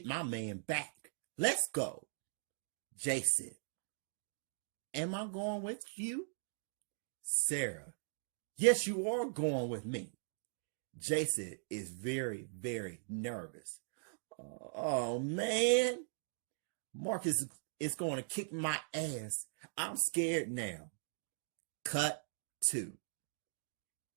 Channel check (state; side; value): silent; left; digital silence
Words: my man back. Let's go." Jason, "Am I going with you?" Sarah, "Yes, you are going with me." Jason is very, very nervous. "Oh man, Marcus is going to kick my ass. I'm scared now." Cut 2.